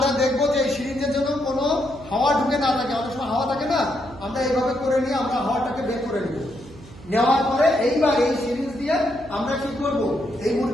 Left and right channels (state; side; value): noise; right; hum, 19 dB below the sound